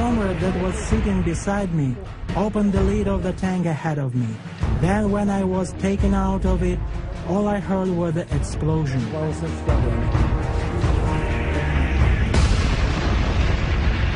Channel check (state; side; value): identical; both; correlation 1.00